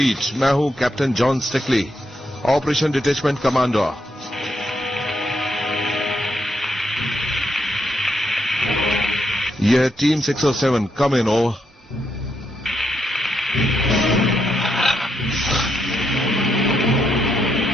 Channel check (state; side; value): normal; both; correlation 0.79